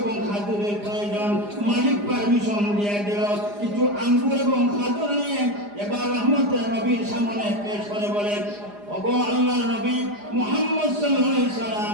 খাজুরের প্রয়োজন। মালিক পারমিশন দিয়ে দিল, কিছু আঙ্গুর এবং খাজুর নিয়ে এবার রহমতের নবীর সামনে পেশ করে বলে, ওগো আল্লাহর নবী মুহাম্মদ সাল্লাল্লাহু আলাইহি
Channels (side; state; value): left; late; 4.9 ms